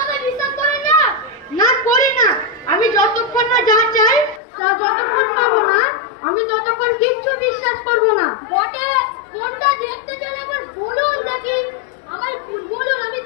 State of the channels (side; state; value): right; drops out; at 4.4 s